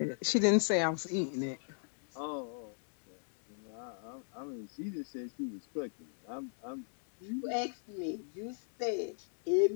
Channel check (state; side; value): silent; right; digital silence